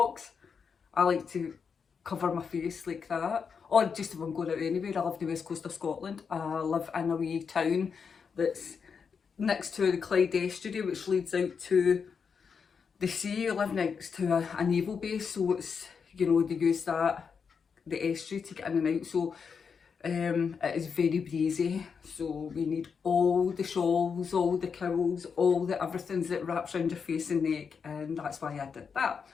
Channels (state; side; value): quieter; right; 6.1 dB